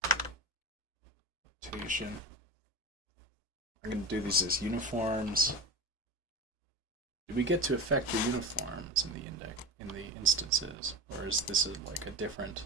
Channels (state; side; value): normal; both; correlation 0.27